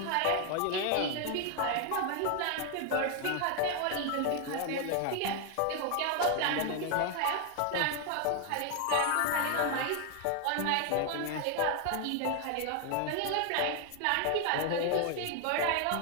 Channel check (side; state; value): both; different; correlation 0.01